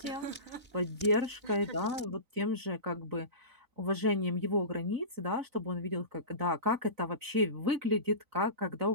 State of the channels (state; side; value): late; left; 3.9 ms